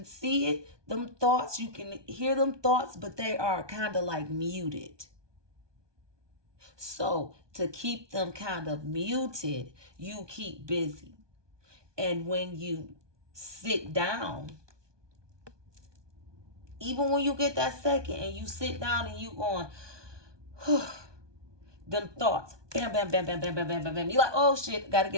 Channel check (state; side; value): late; left; 1.2 ms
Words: see it, them thoughts, you can hear them thoughts, but they are kind of like muted. So to keep them kind of muted, you keep busy. And when you sit down, even when you get that second and you sit down and you going, them thoughts, bam, bam, bam, bam, bam, bam, bam, bam, bam. You're like, oh shit, gotta